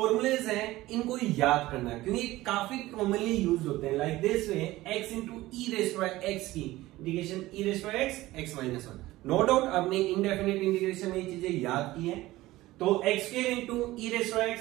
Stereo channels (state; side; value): quieter; left; 17.6 dB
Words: हैं, इनको याद करना है क्योंकि काफी कॉमनली यूज होते हैं। Like this way, x into e raised by एक्स की integration e raised by x, x minus 1। No doubt आपने इंडेफिनिट इंटीग्रेशन में ये चीजें याद की हैं। तो x square into e raised by